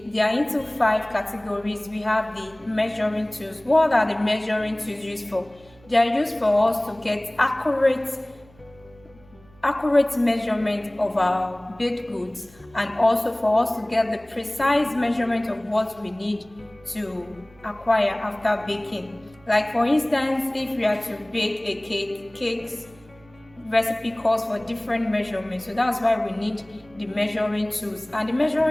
are into 5 categories. We have the measuring tools. What are the measuring tools used for? They are used for us to get accurate measurement of our baked goods, and also for us to get the precise measurement of what we need to acquire after baking. Like for instance, if we are to bake a cake's recipe calls for different measurements, so that's why we need the measuring tools. And the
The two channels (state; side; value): noise; right; hum, 27 dB below the sound